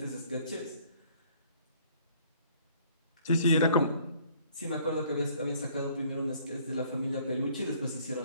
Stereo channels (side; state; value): both; inverted; correlation -0.59